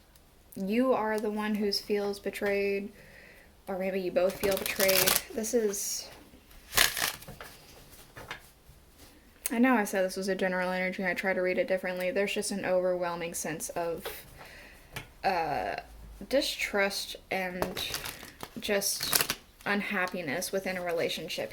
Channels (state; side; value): identical; both; correlation 1.00